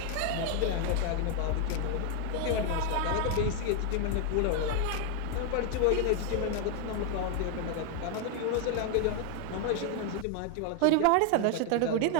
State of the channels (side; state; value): both; different; correlation 0.00